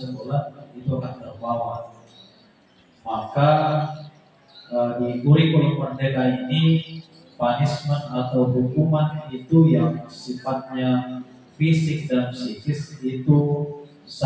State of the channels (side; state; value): both; identical; correlation 1.00